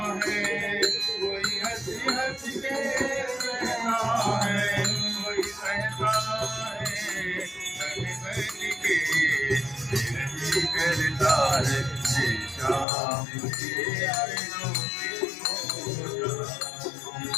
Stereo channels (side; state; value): right; drops out; at 12.9 s